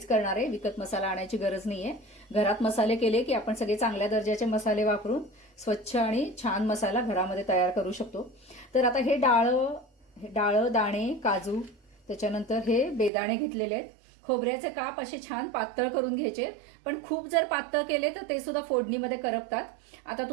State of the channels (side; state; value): left; drops out; at 13.1 s